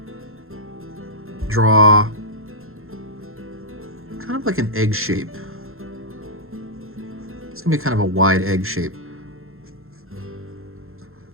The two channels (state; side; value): late; left; 0.61 ms